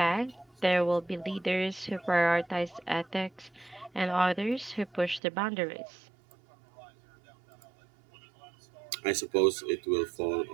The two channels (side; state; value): left; drops out; at 5.2 s